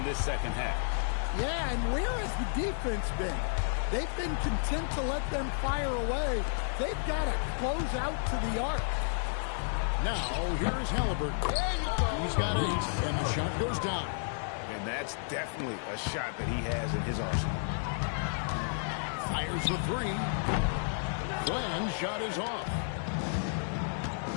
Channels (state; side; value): silent; right; digital silence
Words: this second half. Yeah, and where has the defense been? They've been content to let them fire away. They've got to close out to the arc. Now, here's Halliburton. He's got 8, and the shot goes down. And that's definitely a shot that he has in his arsenal. Fires the 3. Fland's shot is off.